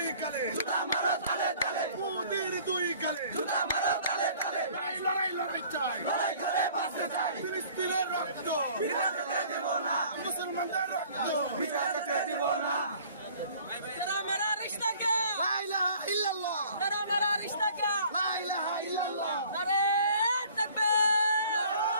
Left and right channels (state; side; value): inverted; both; correlation -0.53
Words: গালে জুতা মারো তালে তালে, মোদির দুই গালে জুতা মারো তালে তালে, লড়াই চাই লড়াই করে বাঁচতে চাই, ফিলিস্তিনের রক্ত বিনা যেতে দেব না, মুসলমানদের রক্ত বিনা যেতে দিব না। तेरा मेरा रिश्ता क्या, লা ইলাহা ইল্লাল্লাহ तेरा मेरा रिश्ता क्या, লা ইলাহা ইল্লাল্লাহ नारे तकबीर।